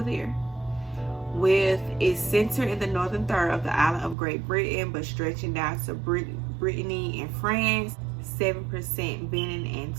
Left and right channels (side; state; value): left; drops out; at 4.2 s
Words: there. With its center in the northern third of the island of Great Britain, but stretching down to Brittany and France, 7% Benin and